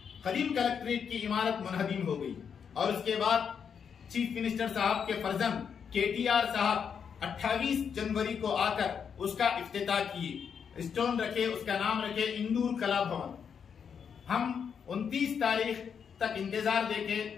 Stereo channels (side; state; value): right; quieter; 7.0 dB